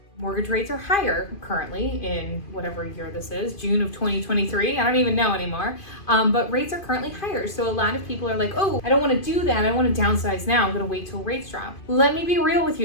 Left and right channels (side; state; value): right; late; 2.5 ms